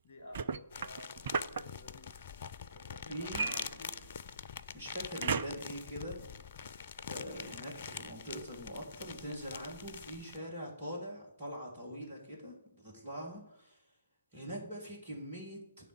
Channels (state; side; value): inverted; both; correlation -0.61